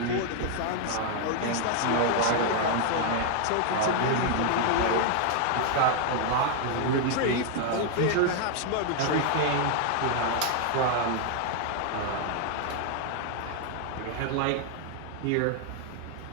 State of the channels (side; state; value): both; different; correlation 0.00